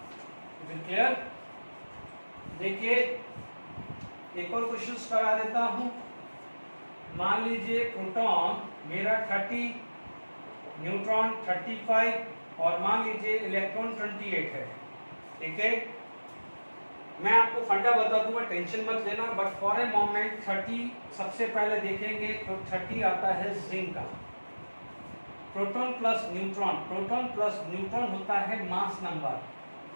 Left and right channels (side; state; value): both; inverted; correlation -1.00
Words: Is it clear? देखिए एक और क्वेश्चन करा देता हूं। मान लीजिए प्रोटॉन मेरा 30, न्यूट्रॉन 35 और मान लीजिए इलेक्ट्रॉन 28 है। ठीक है, मैं आपको फंडा बता दूंगा, टेंशन मत लेना, बट फॉर ए मोमेंट 30 सबसे पहले देखेंगे तो 30 आता है जिंक का। Proton plus neutron, proton plus neutron होता है mass number.